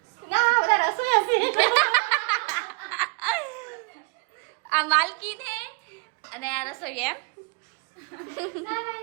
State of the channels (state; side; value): quieter; left; 33.6 dB